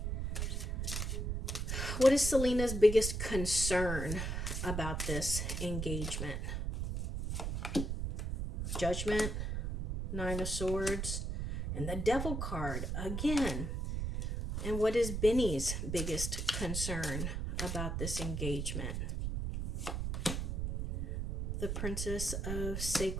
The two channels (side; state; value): right; noise; rumble, 2 dB below the sound